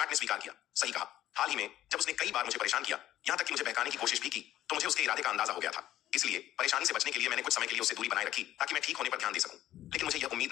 ने स्वीकार किया, सही कहा। हाल ही में जब उसने कई बार मुझे परेशान किया, यहां तक कि मुझे बहकाने की कोशिश भी की, तो मुझे उसके इरादे का अंदाजा हो गया था। इसलिए परेशानी से बचने के लिए मैंने कुछ समय के लिए उससे दूरी बनाए रखी ताकि मैं ठीक होने पर ध्यान दे सकूं। लेकिन मुझे यह उम्मीद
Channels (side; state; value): right; quieter; 13.2 dB